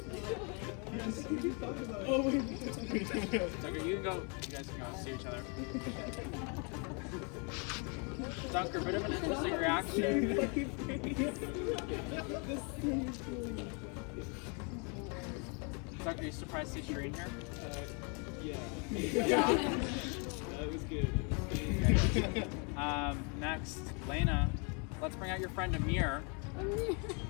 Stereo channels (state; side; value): quieter; right; 35.3 dB